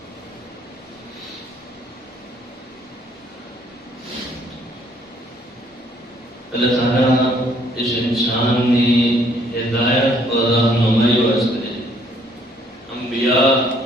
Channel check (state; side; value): normal; both; correlation 0.64